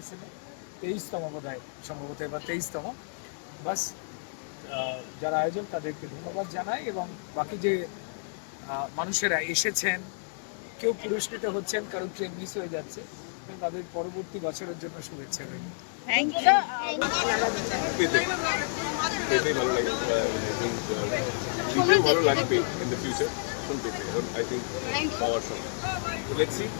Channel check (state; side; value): silent; right; digital silence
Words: 23তম বোধহয়, সম্ভবত এবার 23তম। বাস যারা আয়োজন তাদেরকে ধন্যবাদ জানাই, এবং বাকি যে মানুষেরা এসেছেন, কেউ পুরস্কৃত হচ্ছেন, কারো ট্রেন মিস হয়ে যাচ্ছে, তাদের পরবর্তী বছরের জন্য শুভেচ্ছা রইল। Thank you. পেতে ভালো লাগে। আই থিঙ্ক দিতেও ভালো লাগবে ইন দ্য ফিউচার। এখন পেতে আই থিঙ্ক পাওয়ার সময়। তো লেটস সি